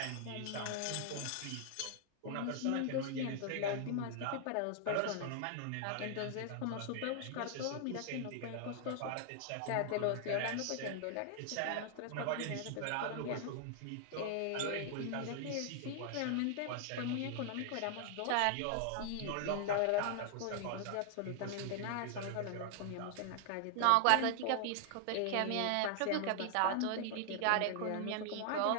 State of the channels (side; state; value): both; different; correlation 0.00